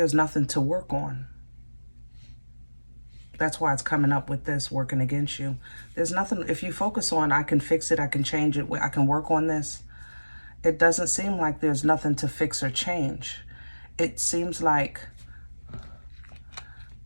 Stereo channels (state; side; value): inverted; both; correlation -1.00